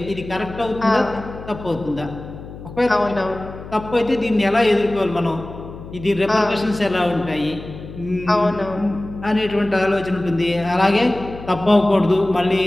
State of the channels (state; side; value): noise; left; hum, 14 dB below the sound